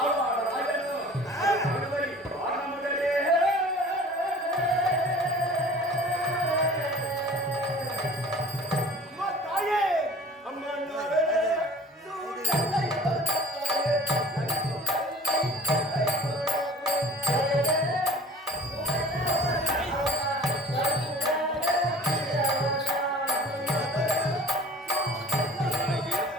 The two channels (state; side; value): normal; both; correlation 0.44